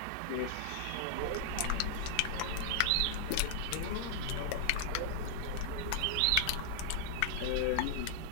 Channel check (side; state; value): both; different; correlation -0.01